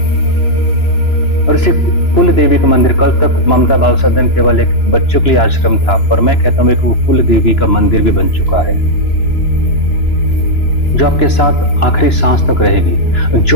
और इसी कुल देवी का मंदिर, कल तक ममता बाल सदन केवल एक बच्चों के लिए आश्रम था, पर मैं कहता हूँ एक कुल देवी का मंदिर भी बन चुका है, जो आपके साथ आखिरी सांस तक रहेगी।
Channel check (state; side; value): late; right; 2.9 ms